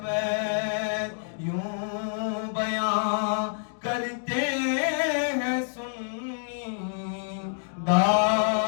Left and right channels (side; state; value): right; silent; digital silence